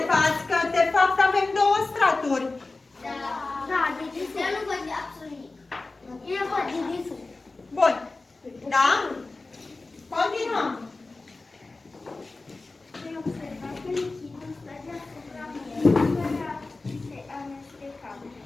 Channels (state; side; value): quieter; right; 3.4 dB